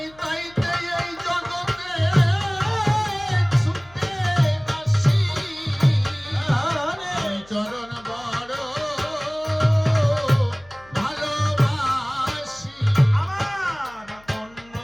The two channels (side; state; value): left; noise; hum, 26 dB below the sound